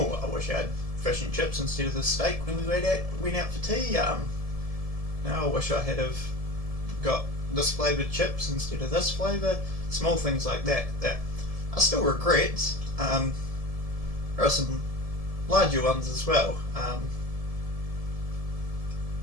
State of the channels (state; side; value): late; left; 1.7 ms